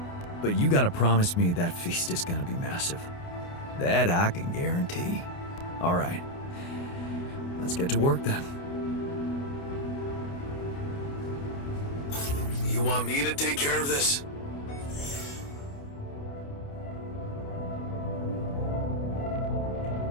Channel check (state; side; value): late; right; 29 ms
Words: But you gotta promise me that feast is gonna be massive. That I can guarantee. All right. Let's get to work then. You want me to take care of this?